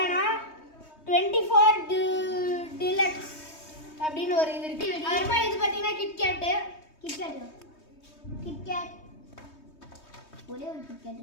24 டிலக்ஸ் அப்படின்னு ஒரு இது இருக்கு. அப்புறமா இது பார்த்தீங்கன்னா கிட்கேட் ஒரே ஒரு கிட்கேட்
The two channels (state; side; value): late; right; 3.2 ms